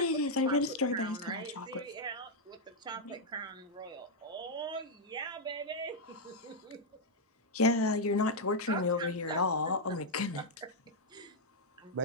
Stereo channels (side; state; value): both; normal; correlation -0.02